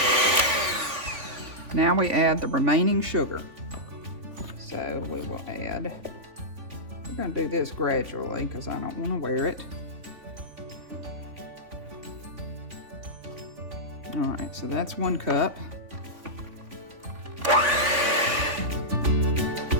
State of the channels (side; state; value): left; late; 3.5 ms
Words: Now we add the remaining sugar. So we will add, we're going to do this gradually because I don't want to wear it. All right, so that's 1 cup.